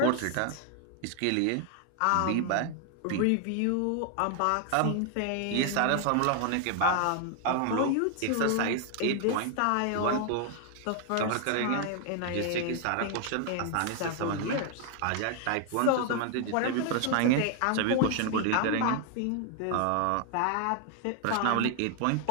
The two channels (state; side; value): different; both; correlation 0.00